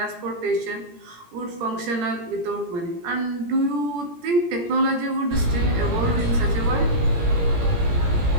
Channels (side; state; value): left; late; 17 ms